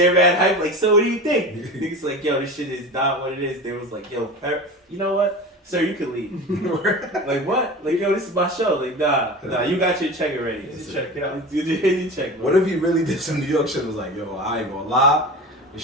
mad hype, like, so what do you think? Niggas like, yo, this shit is not what it is. They was like, yo, you know what? Sir, you can leave. Like, what? Like, yo, this is my show. Like, nah, you got your check already. Check, yeah. You check, bro. What if he really did some New York shit and was like, yo, I ain't gonna lie. This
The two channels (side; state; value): both; normal; correlation 0.32